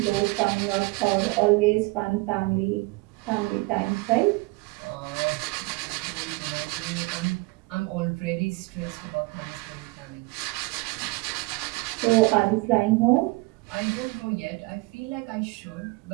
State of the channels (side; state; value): left; quieter; 24.2 dB